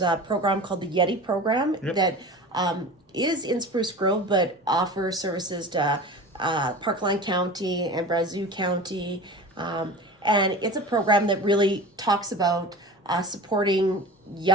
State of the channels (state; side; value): normal; both; correlation 0.34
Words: a program called the Yeti program that is in Spruce Grove, but offers services to Parkland County and Brazeau County. And it's a program that really talks about supporting